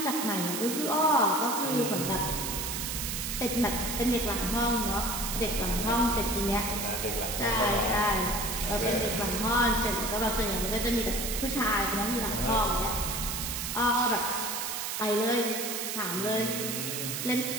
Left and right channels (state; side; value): noise; right; hiss, 3 dB below the sound